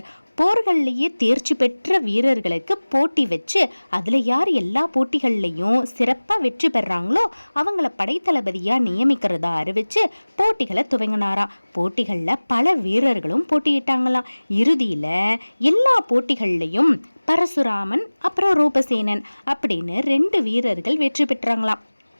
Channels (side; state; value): both; inverted; correlation -1.00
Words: போர்கள்லேயே தேர்ச்சி பெற்ற வீரர்களுக்கு போட்டி வச்சு அதில் யார் எல்லா போட்டிகள்லையும் சிறப்பாக வெற்றி பெறாங்களோ அவங்கள படைத்தளபதியாக நியமிக்கிறதா அறிவிச்சு போட்டிகளை துவங்கினாராம். போட்டிகளில் பல வீரர்களும் போட்டியிட்டாங்களாம். இறுதியில் எல்லா போட்டிகள்லையும் பரசுராமன் அப்புறம் ரூபசேனன் அப்படின்னு 2 வீரர்கள் வெற்றி பெற்றாங்களாம்.